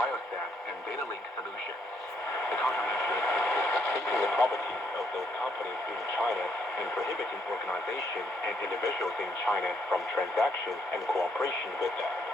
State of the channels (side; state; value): both; normal; correlation 0.72